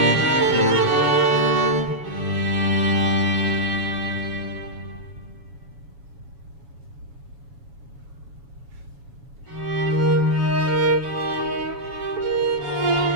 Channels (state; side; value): late; left; 7.1 ms